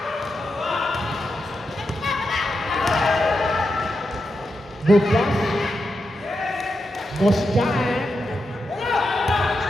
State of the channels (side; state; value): both; normal; correlation 0.87